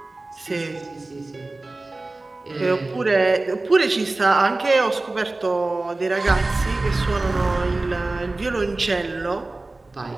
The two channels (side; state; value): left; quieter; 3.1 dB